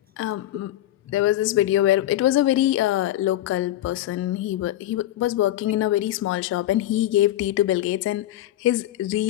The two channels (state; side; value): quieter; right; 13.8 dB